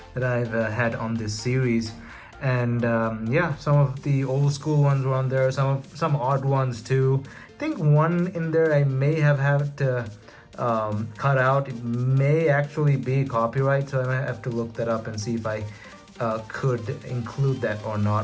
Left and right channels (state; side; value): identical; both; correlation 1.00